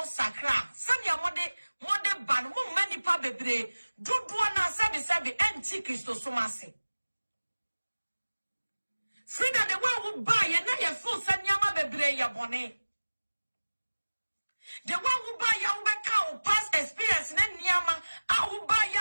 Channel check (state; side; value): inverted; both; correlation -1.00